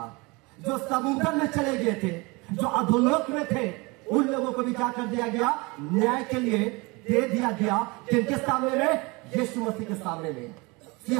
जो समुद्र में चले गए थे, जो अधोलोक में थे उन लोगों को भी क्या कर दिया गया, न्याय के लिए दे दिया गया। किनके सामने में, यीशु मसीह के सामने में,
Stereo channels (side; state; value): left; quieter; 25.9 dB